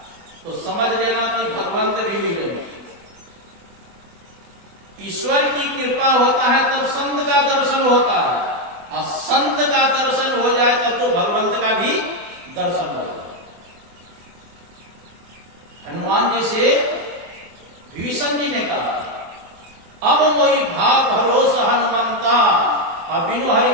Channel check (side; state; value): left; late; 24 ms